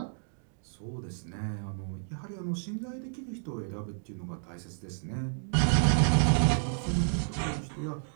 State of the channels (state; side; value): silent; left; digital silence